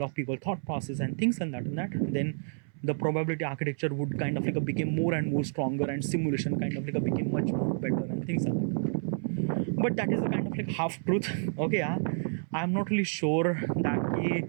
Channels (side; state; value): left; silent; 58 dB below the other